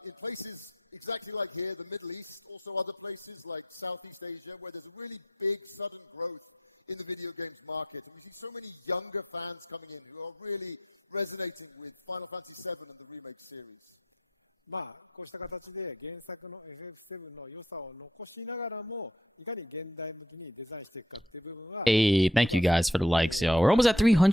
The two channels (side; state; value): both; normal; correlation 0.66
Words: in places exactly like here, the Middle East, also other places like Southeast Asia, where there's a really big sudden growth in the video games market. And we see so many younger fans coming in who are really resonating with Final Fantasy VII and the remake series. まあこうした形で原作の FF7 の良さを残しながらもいかに現代向きにデザインしていくかっていう部分は Hey, thank you guys for the likes, yo. We're almost at